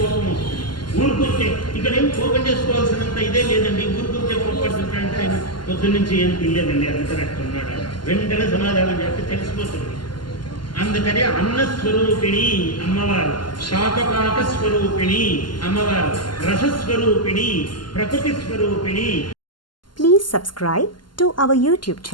వస్తుంది. ఊరుకుంటే ఇక్కడేం కోపం చేసుకోవాల్సినంత ఇదే లేదండి. ఊరుకుంటే కోపడుతుంటాడంటే ఆయన పొద్దున్నుంచి ఏం తినలేదండి, అందుకనట్టు ఉన్నాడు. వెంటనే సమాధానం చేస్తే తెలిసిపోతుంది. అందుకని అన్నస్వరూపిణి అమ్మవారు, శాకపాక స్వరూపిణి అమ్మవారు, రసస్వరూపిణి, ప్రకృతి స్వరూపిణి. Please subscribe to our YouTube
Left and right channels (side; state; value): right; late; 0.71 ms